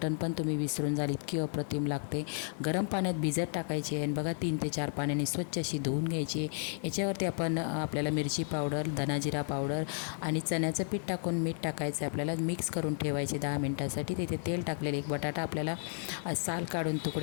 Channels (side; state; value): right; silent; 56 dB below the other